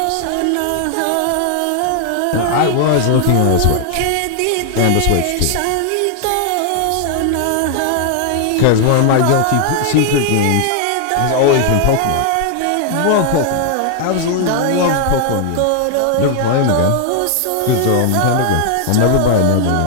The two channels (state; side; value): different; both; correlation 0.00